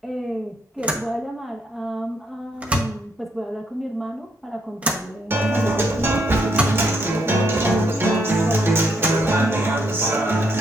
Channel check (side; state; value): both; normal; correlation 0.75